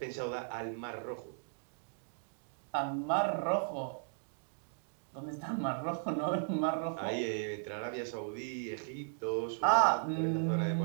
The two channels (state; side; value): silent; left; digital silence